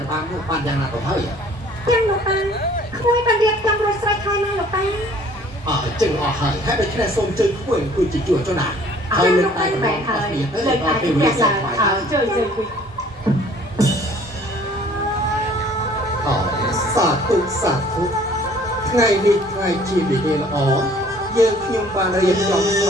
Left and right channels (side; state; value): both; normal; correlation 0.55